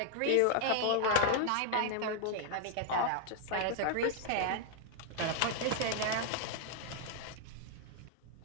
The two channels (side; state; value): both; different; correlation 0.00